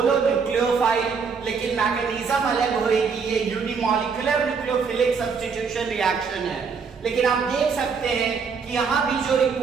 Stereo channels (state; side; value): quieter; left; 5.6 dB